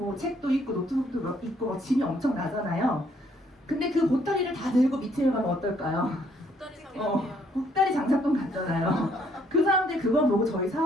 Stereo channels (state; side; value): normal; both; correlation 0.67